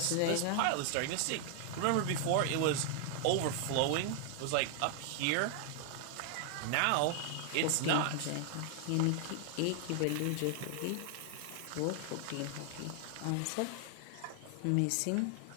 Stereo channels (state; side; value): different; both; correlation 0.00